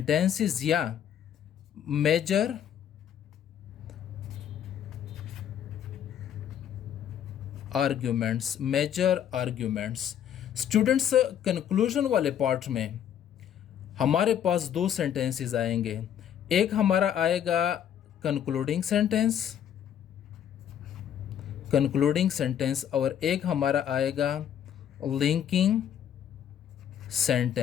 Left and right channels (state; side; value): quieter; right; 9.6 dB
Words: या major arguments, major arguments. Students, conclusion वाले पार्ट में हमारे पास 2 सेंटेंसेस आएंगे। एक हमारा आएगा कंक्लूडिंग सेंटेंस और एक हमारा आएगा लिंकिंग